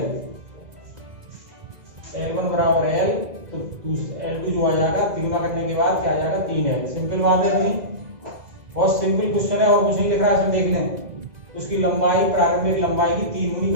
L1 बराबर L, तो L2 जो आ जाएगा 3 गुना करने के बाद क्या आ जाएगा 3L। सिंपल बात है नहीं, बहुत सिंपल क्वेश्चन है और कुछ नहीं लिख रहा है, इसमें देख लें। उसकी लंबाई प्रारंभिक लंबाई की 3 गुनी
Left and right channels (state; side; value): late; left; 2.0 ms